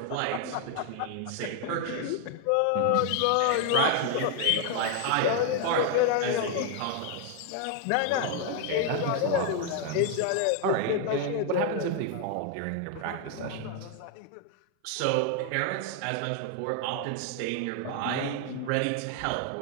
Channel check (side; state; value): both; different; correlation 0.00